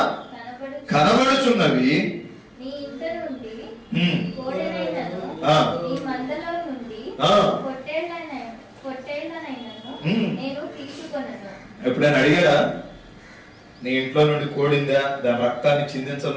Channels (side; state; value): both; identical; correlation 1.00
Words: కనబడుచున్నవి. ఎప్పుడైనా అడిగారా నీ ఇంట్లో నుండి కోడిందా దాని రక్తాన్ని